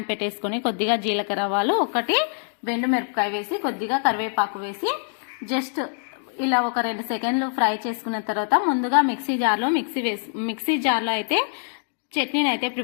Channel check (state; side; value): silent; right; 62 dB below the other